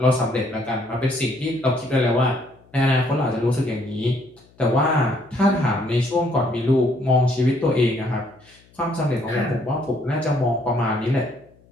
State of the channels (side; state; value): left; noise; hum, 30 dB below the sound